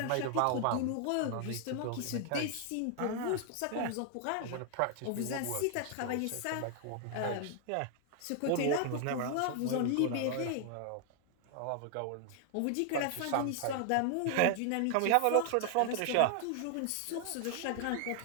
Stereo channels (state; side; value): different; both; correlation 0.00